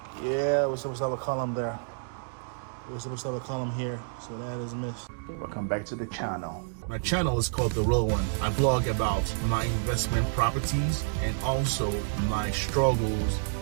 Yeah, we're supposed to have a column there. We're supposed to have a column here, so that is missed. Welcome back to the channel. My channel is called TheRilwan. I blog about my investment properties and also my struggles,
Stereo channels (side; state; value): left; silent; digital silence